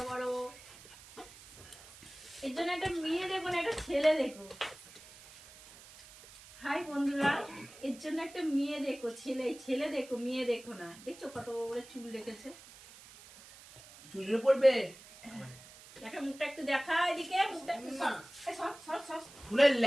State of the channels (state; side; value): noise; right; hiss, 19 dB below the sound